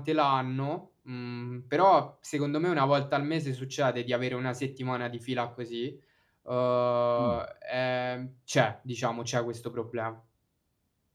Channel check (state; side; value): identical; both; correlation 1.00